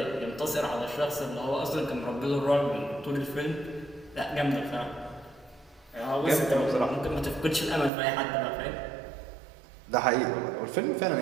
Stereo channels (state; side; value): drops out; left; at 7.9 s